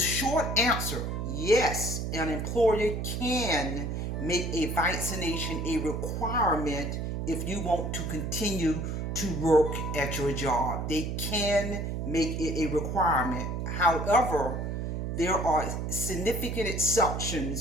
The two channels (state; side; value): noise; right; hum, 3 dB below the sound